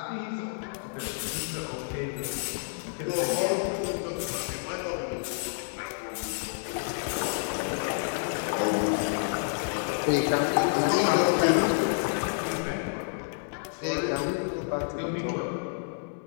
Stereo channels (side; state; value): right; silent; digital silence